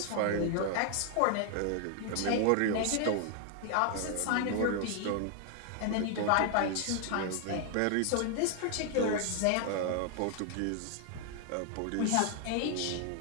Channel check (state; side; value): different; both; correlation 0.00